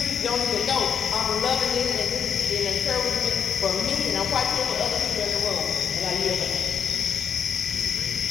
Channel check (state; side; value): quieter; right; 7.5 dB